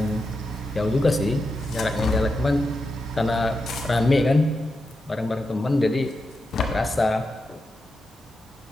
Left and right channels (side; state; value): both; normal; correlation 0.88